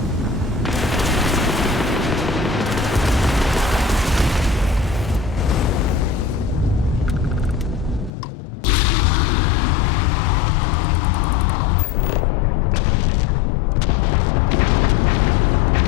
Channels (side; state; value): right; drops out; at 8.1 s